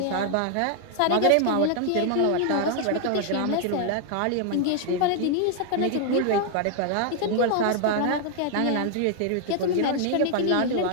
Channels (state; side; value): different; both; correlation 0.00